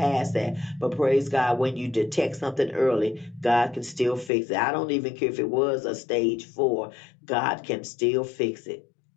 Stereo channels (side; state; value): right; drops out; at 4.3 s